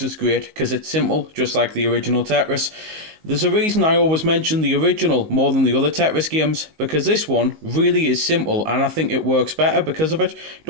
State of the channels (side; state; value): left; late; 19 ms